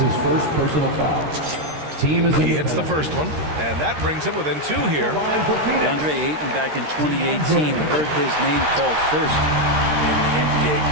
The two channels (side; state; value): left; late; 13 ms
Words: his first personal foul. Team is he hits the first one, and that brings him within 2 here. DeAndre Ayton back in 2018 heard his name called first in the NBA